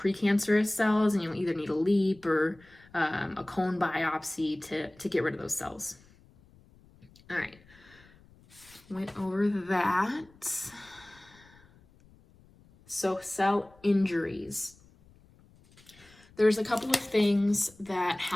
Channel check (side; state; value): left; noise; rumble, 27 dB below the sound